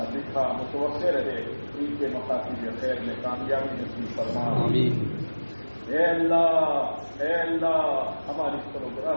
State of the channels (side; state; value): both; inverted; correlation -1.00